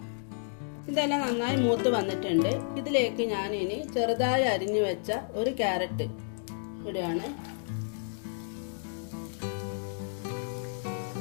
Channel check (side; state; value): right; silent; digital silence